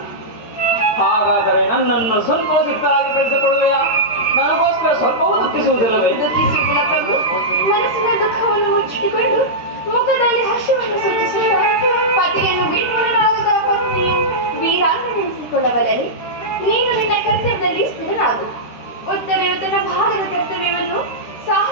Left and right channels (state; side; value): late; right; 13 ms